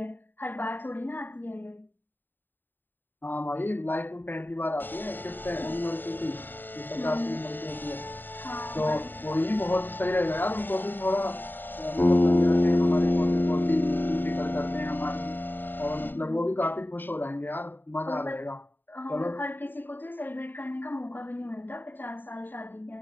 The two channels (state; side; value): late; right; 0.092 ms